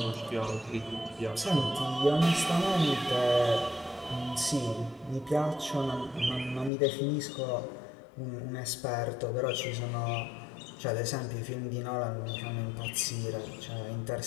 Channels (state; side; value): drops out; right; at 6.7 s